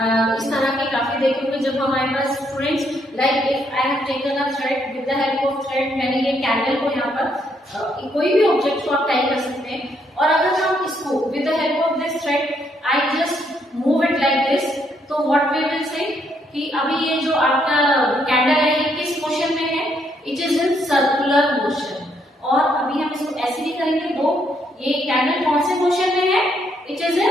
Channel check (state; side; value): normal; both; correlation 0.73